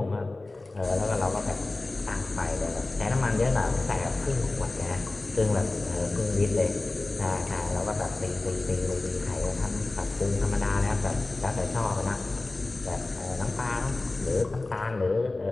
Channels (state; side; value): quieter; right; 3.1 dB